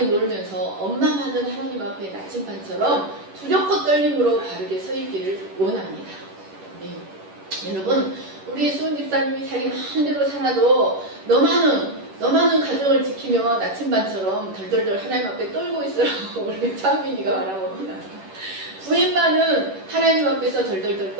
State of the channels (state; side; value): late; left; 11 ms